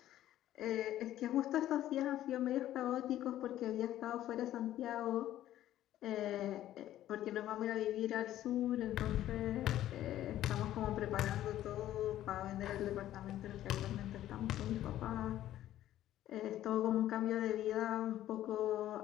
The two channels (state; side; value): quieter; right; 13.0 dB